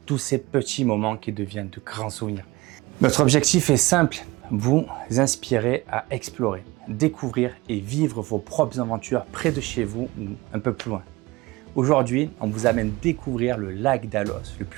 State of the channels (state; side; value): quieter; left; 21.3 dB